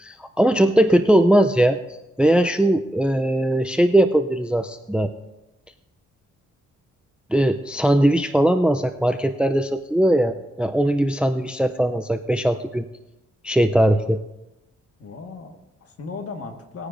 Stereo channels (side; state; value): both; normal; correlation 0.89